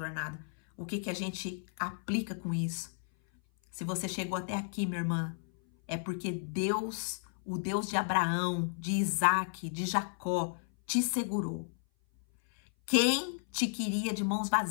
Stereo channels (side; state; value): right; silent; 56 dB below the other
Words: O que a gente aplica com isso? Se você chegou até aqui, minha irmã, é porque Deus, o Deus de Abraão, de Isaac, de Jacó, te segurou. Quem te queria de mãos